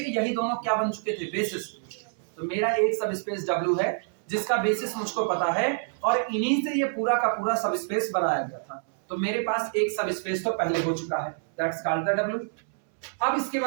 यही दोनों क्या बन चुके थे, बेसिस। तो मेरा एक सब स्पेस W है जिसका बेसिस मुझको पता है और इन्हीं से ये पूरा का पूरा सब स्पेस बनाया गया था। तो मेरे पास एक सब स्पेस तो पहले हो चुका है, दैट्स कॉल्ड द W। अब इसके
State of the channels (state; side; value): silent; left; 60 dB below the other